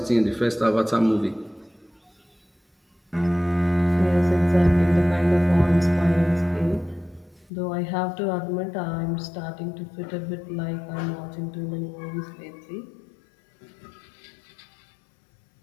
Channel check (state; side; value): drops out; right; at 7.5 s